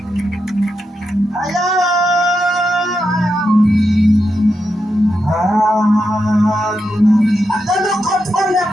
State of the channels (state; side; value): normal; both; correlation 0.86